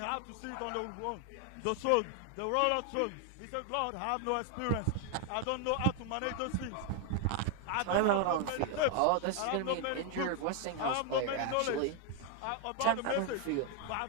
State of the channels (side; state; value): both; different; correlation 0.00